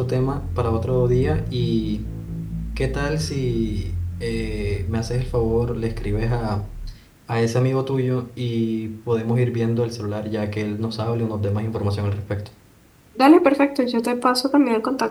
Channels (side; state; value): both; identical; correlation 1.00